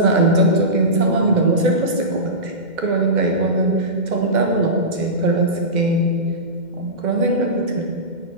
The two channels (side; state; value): left; late; 2.1 ms